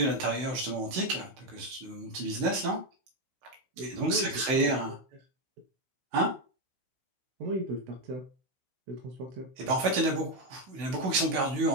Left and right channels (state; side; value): late; left; 16 ms